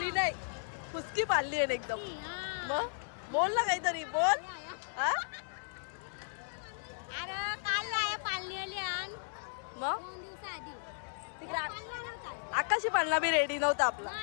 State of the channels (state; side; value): silent; right; 54 dB below the other